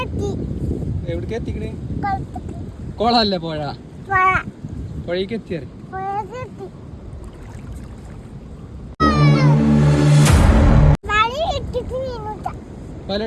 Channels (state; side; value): identical; both; correlation 1.00